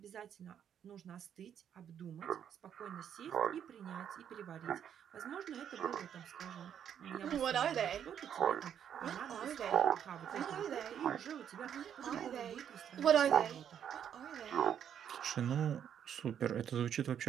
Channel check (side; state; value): left; quieter; 9.0 dB